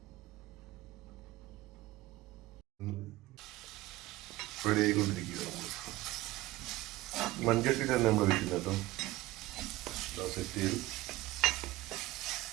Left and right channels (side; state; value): left; quieter; 17.9 dB